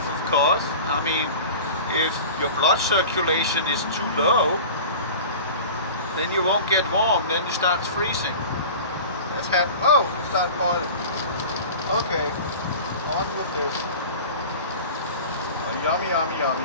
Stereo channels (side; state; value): both; inverted; correlation -0.36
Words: of course. I mean, if your blood circulation is too low, then you won't get warm, then it starts freezing. That's happened. Oh, it started boiling. Okay, on with this. Oh, yummy, yummy,